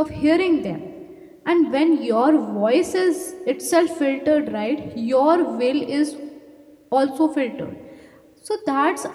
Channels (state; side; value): identical; both; correlation 1.00